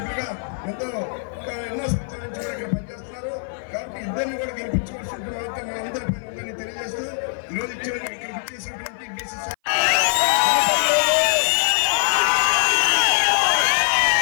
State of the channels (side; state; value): right; silent; 58 dB below the other